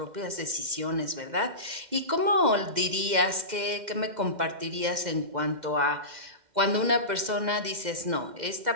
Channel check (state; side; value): late; left; 2.1 ms